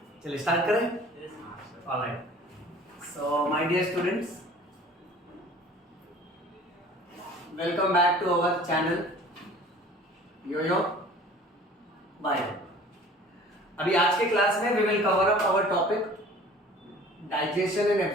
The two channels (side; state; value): both; normal; correlation 0.47